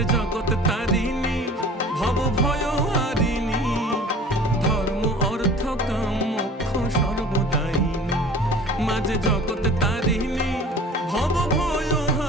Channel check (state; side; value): normal; both; correlation 0.45